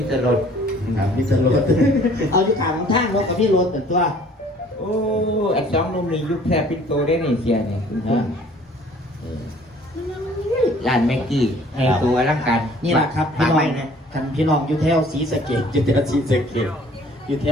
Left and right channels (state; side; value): normal; both; correlation 0.54